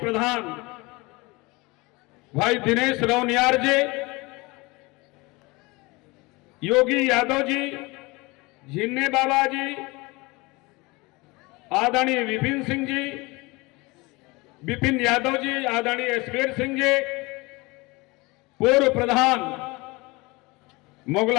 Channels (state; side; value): quieter; right; 24.1 dB